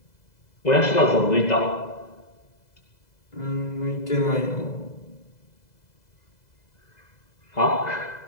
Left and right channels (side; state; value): right; late; 2.0 ms